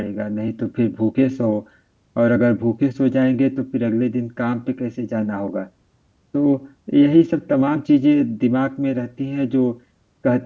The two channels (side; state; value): both; identical; correlation 1.00